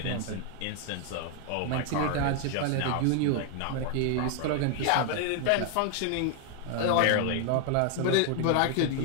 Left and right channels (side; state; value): both; different; correlation 0.01